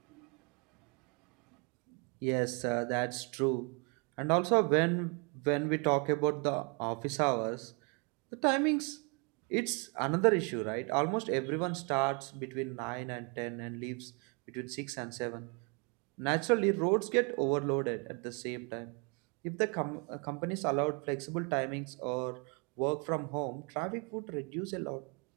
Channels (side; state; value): left; quieter; 34.7 dB